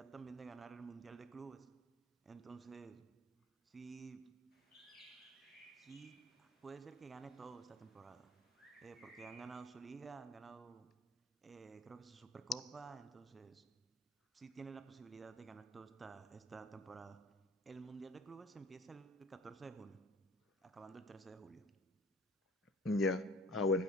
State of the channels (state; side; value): normal; both; correlation 0.49